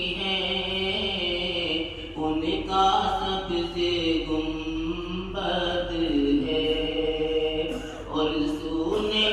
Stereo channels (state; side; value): identical; both; correlation 1.00